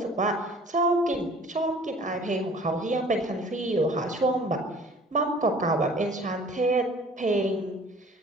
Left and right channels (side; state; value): both; normal; correlation 0.50